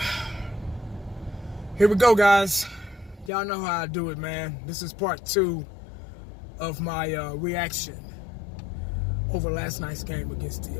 Here we go, guys. Y'all know how I do it, man. This is part 2 of my reaction over last night's game against the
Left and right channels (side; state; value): right; drops out; at 3.3 s